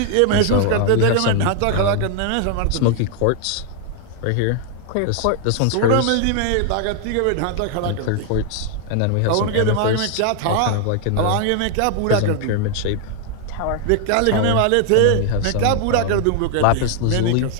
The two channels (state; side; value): different; both; correlation 0.00